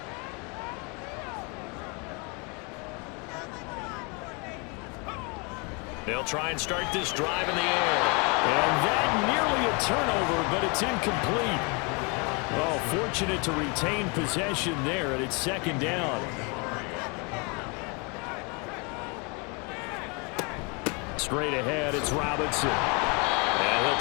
They'll try and start this drive in the air. And that nearly a turnover, but it's incomplete. Oh, fortunate to retain possession there, and it's second down. Straight ahead, it's Robinson. And he'll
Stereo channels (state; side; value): quieter; right; 31.8 dB